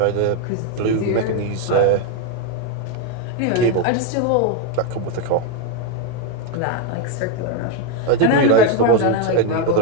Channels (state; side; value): different; both; correlation 0.02